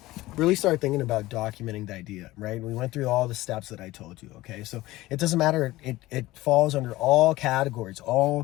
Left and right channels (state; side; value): quieter; right; 17.9 dB